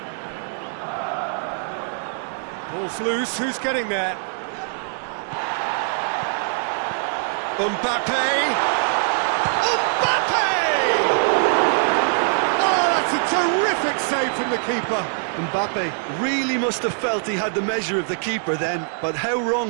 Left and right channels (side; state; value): left; silent; digital silence